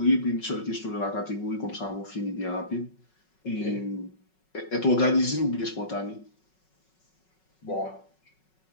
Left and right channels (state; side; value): late; right; 5.4 ms